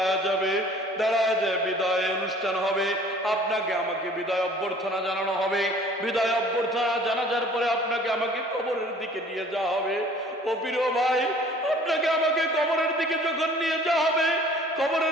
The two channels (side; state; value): both; normal; correlation 0.51